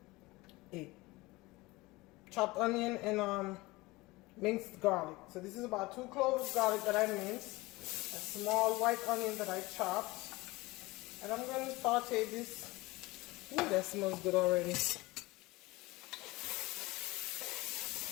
a chopped onion and minced garlic. So this is about 2 cloves of garlic that I minced, a small white onion that I chopped, and I'm going to saute this. Ooh, that smells good already.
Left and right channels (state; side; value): quieter; right; 21.4 dB